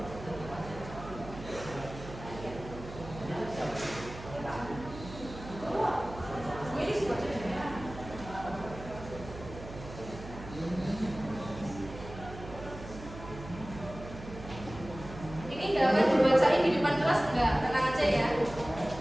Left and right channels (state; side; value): noise; right; hum, 13 dB below the sound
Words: Gue ini suka jadinya. Ini nggak akan dibacain di depan kelas, enggak, tenang aja ya.